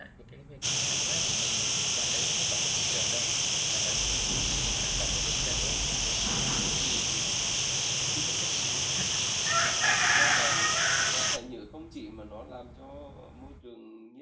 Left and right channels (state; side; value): identical; both; correlation 1.00